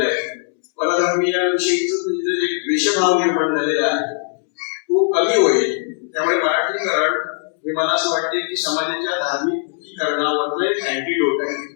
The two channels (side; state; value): right; silent; 66 dB below the other